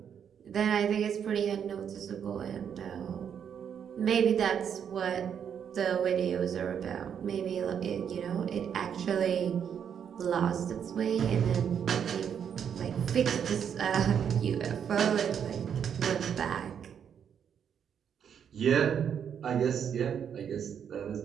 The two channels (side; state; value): left; quieter; 8.1 dB